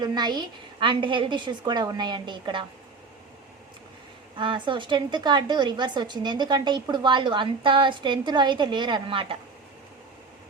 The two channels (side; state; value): left; quieter; 4.4 dB